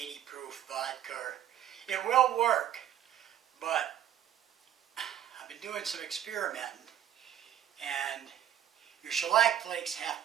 proof vodka. It will work, but I've been doing some experimenting, and your shellac flakes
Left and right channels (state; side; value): quieter; left; 10.8 dB